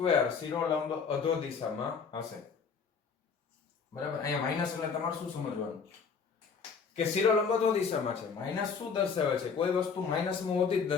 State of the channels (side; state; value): right; quieter; 5.7 dB